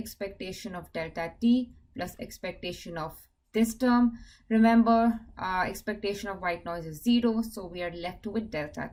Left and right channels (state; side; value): identical; both; correlation 1.00